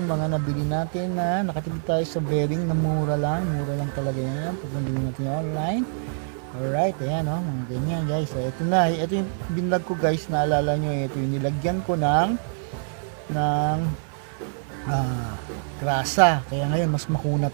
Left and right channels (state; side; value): silent; left; 59 dB below the other